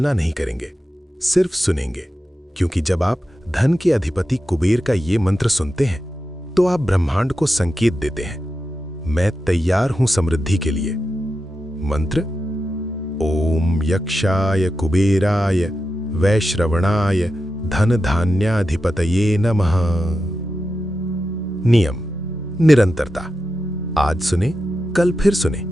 नहीं करेंगे, सिर्फ सुनेंगे। क्योंकि जब आप धन के अधिपति कुबेर का ये मंत्र सुनते हैं तो आप ब्रह्मांड को संकेत देते हैं, मैं तैयार हूं समृद्धि के लिए। मंत्र: ओम यक्षाय कुबेराय वैश्रवणाय धन धान्याधिपतये नमः। नियम: निरंतरता। आज सुने, कल फिर सुने,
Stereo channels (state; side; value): normal; both; correlation 0.90